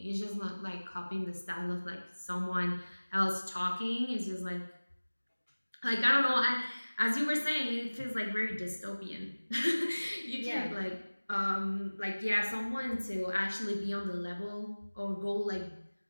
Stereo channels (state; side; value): inverted; both; correlation -1.00